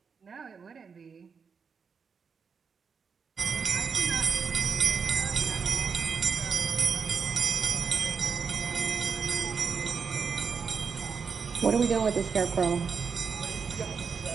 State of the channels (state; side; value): quieter; left; 5.8 dB